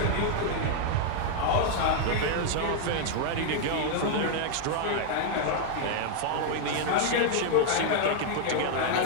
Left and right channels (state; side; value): different; both; correlation 0.00